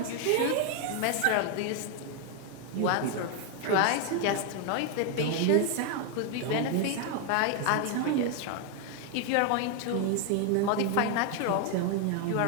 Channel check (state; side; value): different; both; correlation 0.01